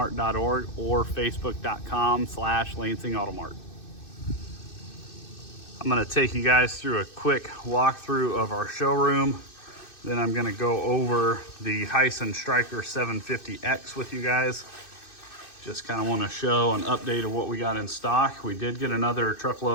or facebook.com/lansingautomart. I'm going to take you guys through a quick walkthrough of our showroom. Then I'm going to go over the Hisun Stryker 750X with you guys. Just kind of want to show an update of what we got in stock. We did get another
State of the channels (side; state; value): right; late; 2.6 ms